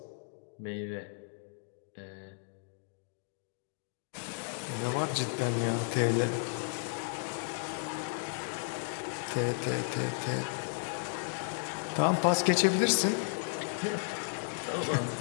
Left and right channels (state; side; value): silent; right; digital silence